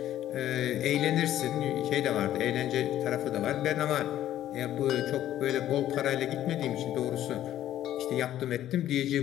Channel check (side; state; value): right; quieter; 12.5 dB